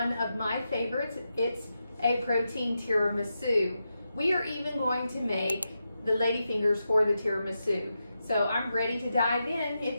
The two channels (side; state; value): both; inverted; correlation -0.88